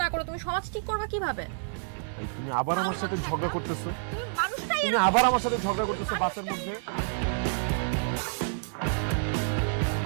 না করো, তুমি সমাজ ঠিক করবে কিভাবে? তুমি আবার আমার সাথে ঝগড়া করতেছো, তুমি মানুষটাই তুমি আবার আমার সাথে ঝগড়া করতেছো বাসের মধ্যে।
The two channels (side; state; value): left; silent; digital silence